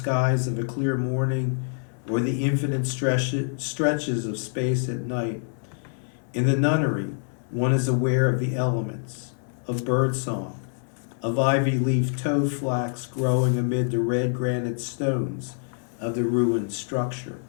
of a clear morning or the infinite stretches of space at night. In the nunnery, one is aware of the elements, of birdsong, of ivy leaf toad flax growing amid the red granite stones of the ruined structure,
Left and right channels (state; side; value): silent; right; 61 dB below the other